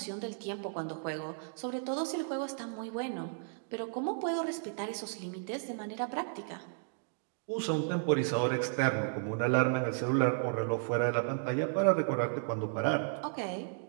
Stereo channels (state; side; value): silent; left; digital silence